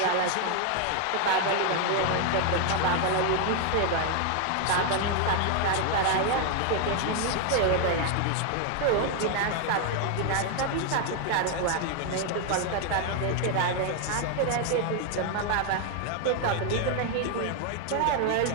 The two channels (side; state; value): both; different; correlation 0.00